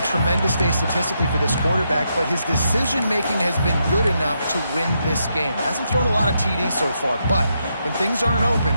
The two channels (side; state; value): both; inverted; correlation -0.80